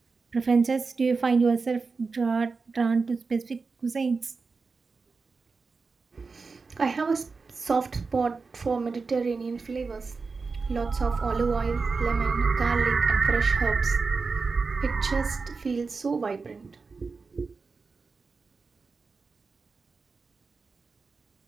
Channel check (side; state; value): left; quieter; 4.5 dB